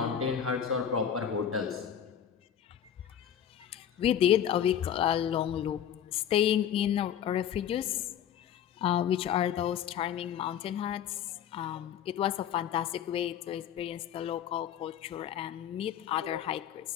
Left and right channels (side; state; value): right; quieter; 9.4 dB